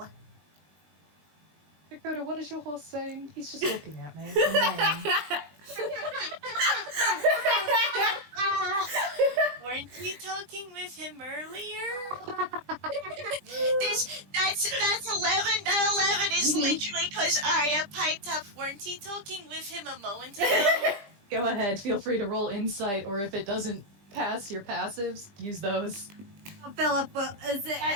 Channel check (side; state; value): left; late; 20 ms